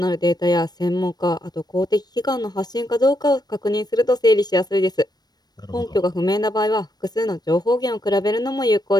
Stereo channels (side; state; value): right; late; 0.19 ms